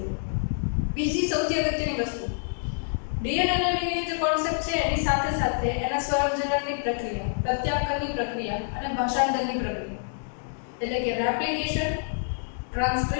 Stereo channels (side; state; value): right; silent; digital silence